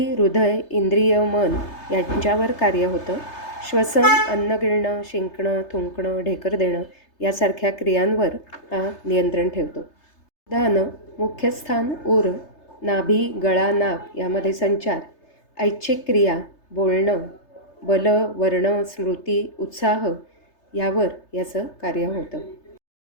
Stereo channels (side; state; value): right; late; 3.3 ms